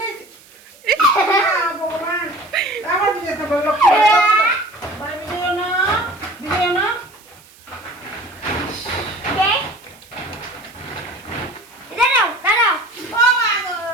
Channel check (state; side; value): noise; right; hiss, 25 dB below the sound